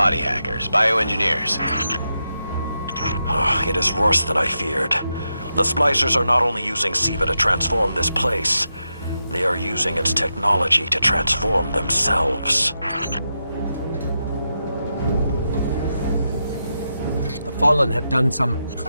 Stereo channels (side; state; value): both; inverted; correlation -0.86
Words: hackers, bioengineers. It is worse than I feared. The Splicers are not only using Siva to transform this place, they are using its technology to transform themselves. The Fallen have done some